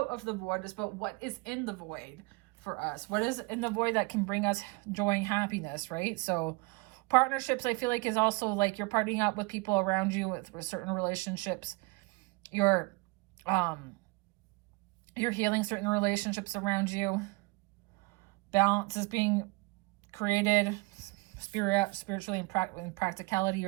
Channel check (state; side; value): quieter; left; 27.1 dB